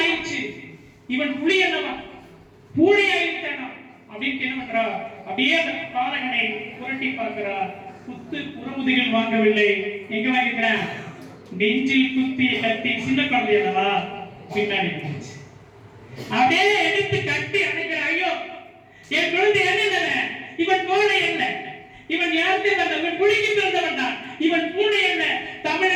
இவன் புலி அல்லவா, பூனை ஆயிட்டானா அப்படின்னு என்ன பண்றா, அப்படியே அந்த பாலகனை புரட்டி பார்க்கிறா. குத்து புறமுதுகில் வாங்கவில்லை, எங்க வாங்கிக்கிறேன், நெஞ்சில் குத்திய கத்தி. சின்ன குழந்தை அல்லவா, பின்னாடி அப்படியே எடுத்து கட்டி அணைக்கிற. ஐயோ என் குழந்தை என்ன, இவன் கோழை அல்ல, இவன் யாருக்கு வந்தவன், புலிக்கு பிறந்தவன் தான். இவன் பூனை அல்ல,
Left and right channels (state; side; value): identical; both; correlation 1.00